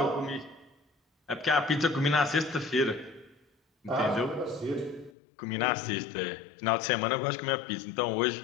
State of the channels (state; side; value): drops out; right; at 5.1 s